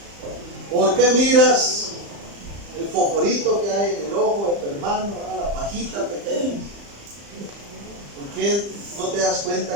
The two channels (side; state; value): left; late; 35 ms